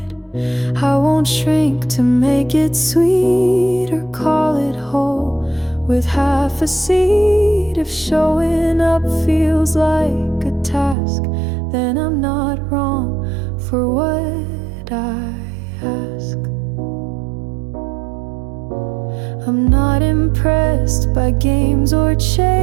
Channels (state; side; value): drops out; left; at 11.0 s